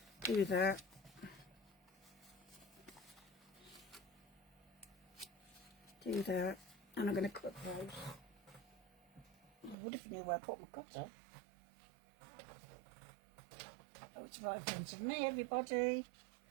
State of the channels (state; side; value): drops out; left; at 9.8 s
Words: do that. Do that, and I'm going to cut those. I would if I knew where I put my cutter. Oh, it's right in front of me, everybody.